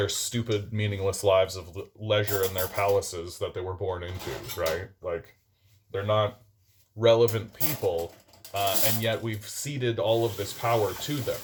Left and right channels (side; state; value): both; identical; correlation 1.00